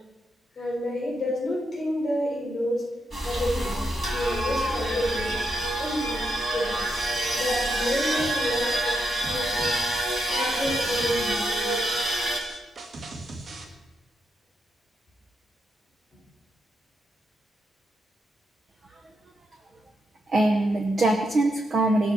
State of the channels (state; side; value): normal; both; correlation 0.83